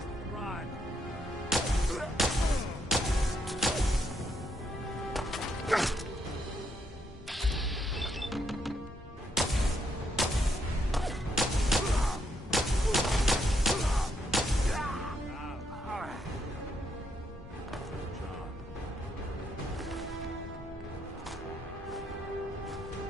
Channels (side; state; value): both; normal; correlation 0.76